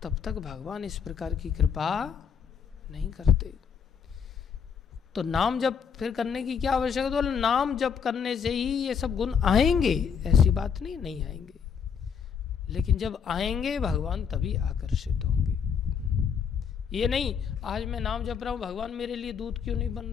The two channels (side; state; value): right; quieter; 6.9 dB